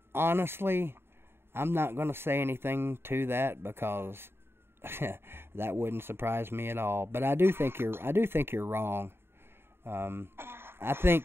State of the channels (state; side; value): late; left; 0.11 ms